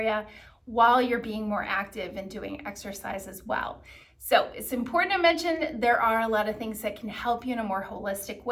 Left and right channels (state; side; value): identical; both; correlation 1.00